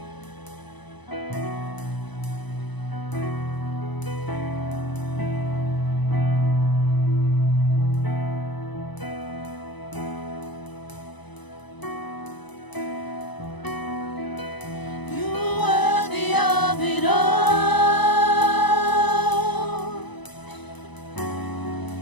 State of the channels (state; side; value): late; right; 1.0 ms